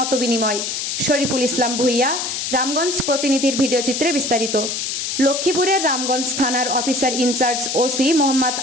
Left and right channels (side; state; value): left; noise; hiss, 3 dB below the sound